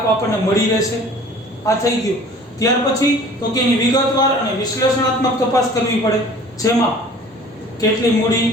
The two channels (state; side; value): normal; both; correlation 0.48